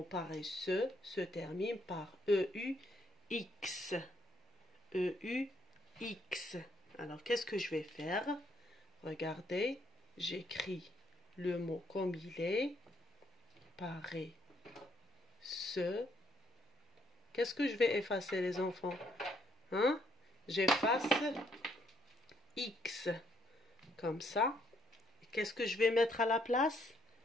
paresseux se termine par EUX. EUX. Alors, qu'est-ce que je vais faire? Regardez, j'écris le mot comme il est. Paresseux. Qu'est-ce que je vais effacer, les enfants? Hein? J'efface X. Comme ça. Qu'est-ce que je vais mettre à la place?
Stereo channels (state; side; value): normal; both; correlation 0.71